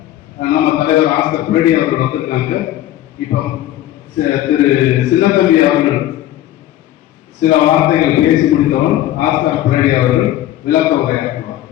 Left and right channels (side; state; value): right; quieter; 13.6 dB